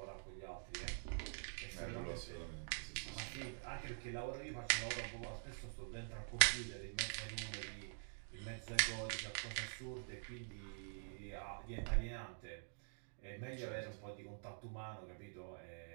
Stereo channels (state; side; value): silent; left; digital silence